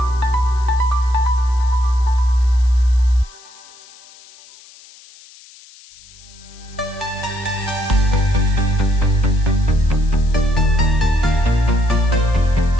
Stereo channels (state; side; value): noise; left; hiss, 23 dB below the sound